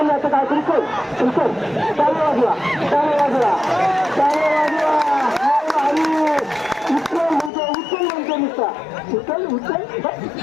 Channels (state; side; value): drops out; right; at 7.5 s